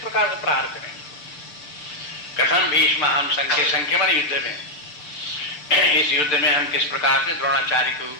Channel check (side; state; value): right; late; 6.8 ms